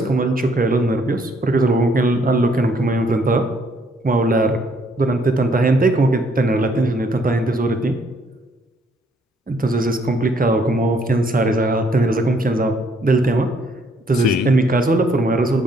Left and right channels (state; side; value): normal; both; correlation 0.67